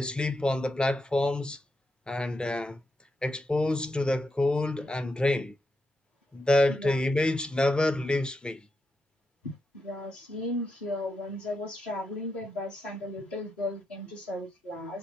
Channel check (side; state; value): both; normal; correlation 0.85